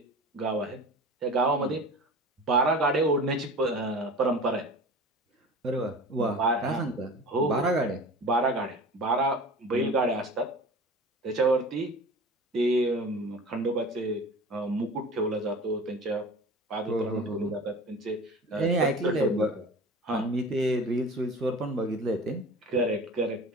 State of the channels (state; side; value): normal; both; correlation 0.37